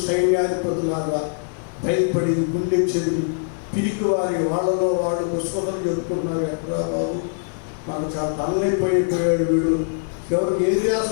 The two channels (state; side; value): silent; right; digital silence